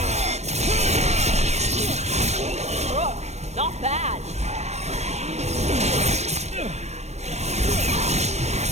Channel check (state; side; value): late; left; 0.32 ms